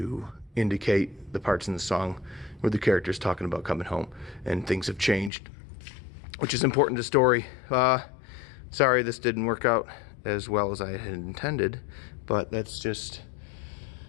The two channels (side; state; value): right; drops out; at 5.3 s